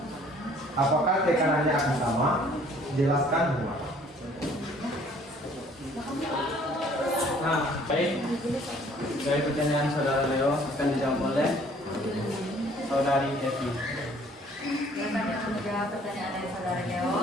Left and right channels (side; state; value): both; normal; correlation 0.57